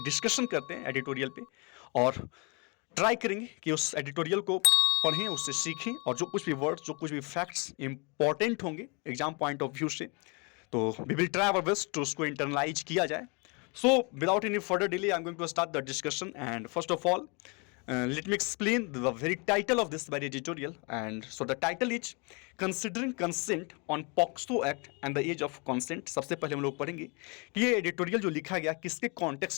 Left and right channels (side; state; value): right; quieter; 32.0 dB